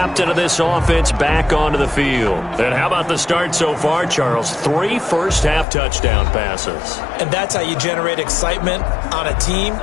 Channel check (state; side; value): drops out; right; at 5.7 s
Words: of this offense back onto the field. And how about the start so far, Charles? 3 first-half touchdown passes. And that's how you generate excitement on a team.